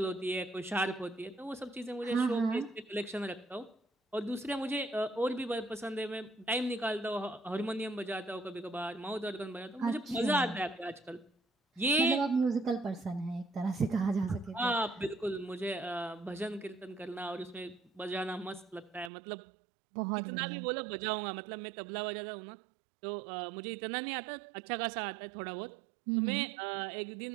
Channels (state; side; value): drops out; left; at 19.1 s